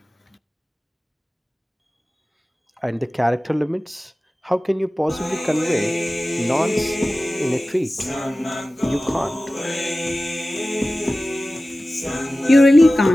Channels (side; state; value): both; normal; correlation 0.96